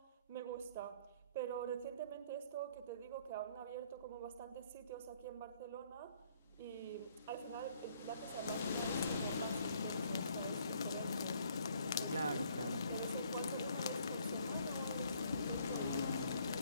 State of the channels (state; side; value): inverted; both; correlation -0.63